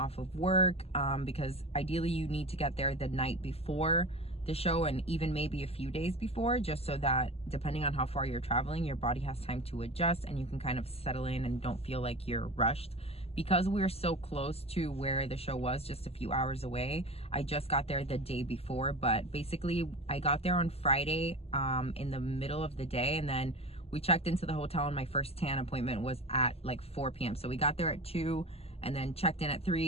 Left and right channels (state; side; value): late; right; 0.29 ms